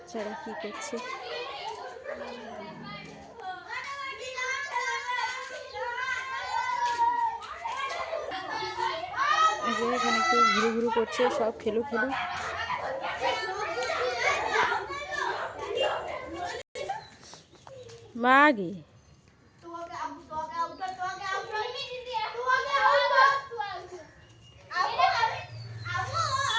কি করছে। এখানে একটু ঘুরু ঘুরু করছে, সব খেলু খেলু। মাগি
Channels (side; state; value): both; identical; correlation 1.00